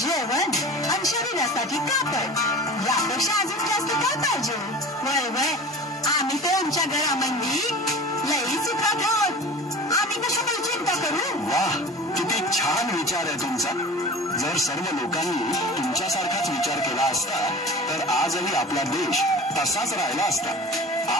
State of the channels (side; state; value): both; normal; correlation 0.37